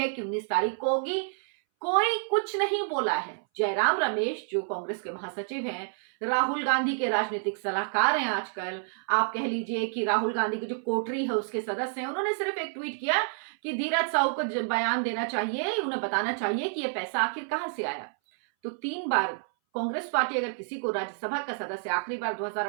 कि 19 तारीख को होगी, कोई कुछ नहीं बोला है। जयराम रमेश, जो कांग्रेस के महासचिव हैं, राहुल गांधी के राजनीतिक सलाहकार हैं आजकल, आप कह लीजिए कि राहुल गांधी की जो कोठरी है उसके सदस्य हैं, उन्होंने सिर्फ एक ट्वीट किया कि धीरज साहू को बयान देना चाहिए, उन्हें बताना चाहिए कि यह पैसा आखिर कहां से आया। तो 3 बार कांग्रेस पार्टी अगर किसी को राज्यसभा का सदस्य आखिरी बार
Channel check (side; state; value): left; silent; 59 dB below the other